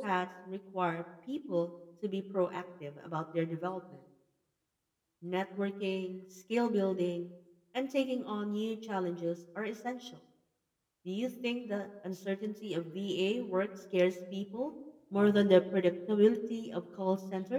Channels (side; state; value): both; identical; correlation 1.00